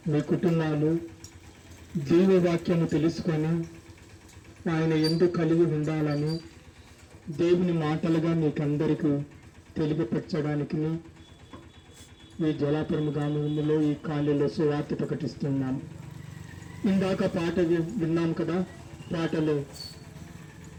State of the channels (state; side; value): identical; both; correlation 1.00